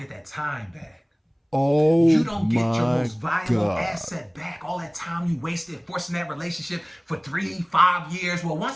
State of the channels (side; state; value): both; identical; correlation 1.00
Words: that time back. Oh, you don't get your my most valuable God. asset back. All that time you wasted forcing that relationship for 3-5 years. Well,